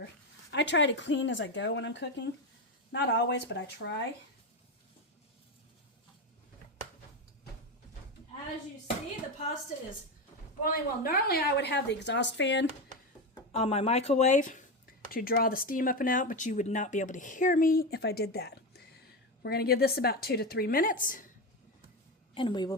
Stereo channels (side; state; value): both; normal; correlation 0.15